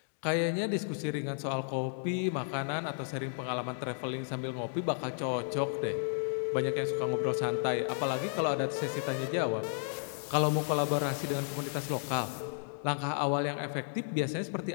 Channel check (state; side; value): silent; right; digital silence